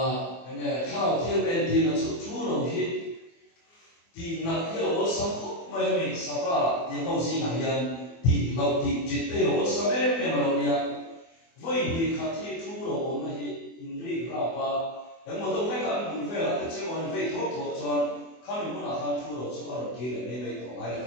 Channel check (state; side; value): late; right; 24 ms